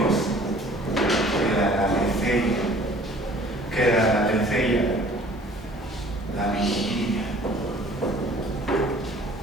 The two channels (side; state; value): both; normal; correlation 0.52